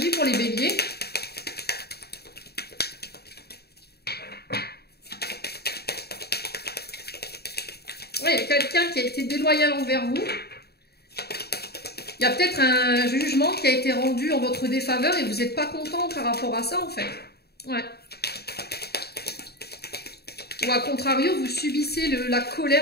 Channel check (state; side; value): late; right; 0.47 ms